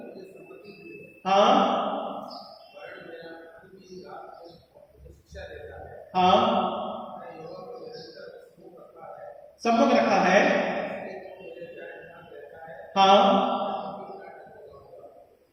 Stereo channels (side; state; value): both; identical; correlation 1.00